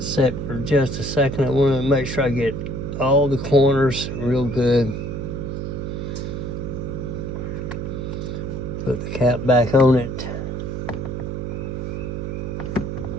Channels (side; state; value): right; noise; hum, 4 dB below the sound